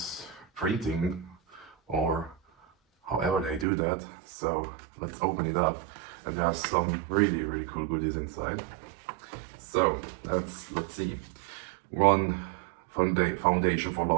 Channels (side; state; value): left; drops out; at 3.7 s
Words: printing, or however they do that. So let's open it up, and there are some really cool goodies inside. So let's see. One Foundation for